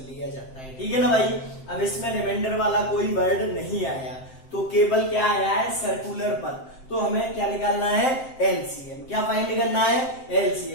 लिया जाता है, ठीक है ना भाई। अब इसमें रिमाइंडर वाला कोई वर्ड नहीं आया, तो केवल क्या आया है? सर्कुलर पथ। तो हमें क्या निकालना है? एलसीएम। क्या फाइंड करना है?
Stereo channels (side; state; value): right; late; 7.7 ms